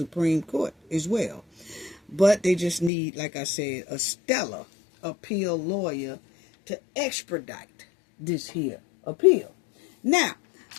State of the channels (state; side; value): drops out; right; at 2.9 s